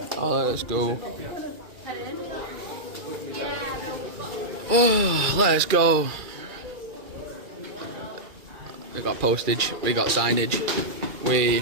Oh, let's go. Oh, let's go. We got postage, we got signage,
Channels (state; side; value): late; left; 2.4 ms